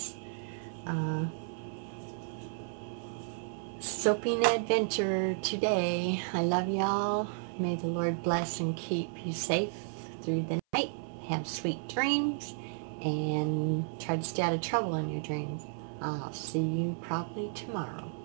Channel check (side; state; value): left; silent; 56 dB below the other